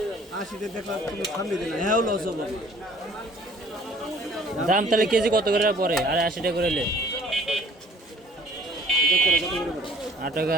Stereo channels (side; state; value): both; normal; correlation 0.55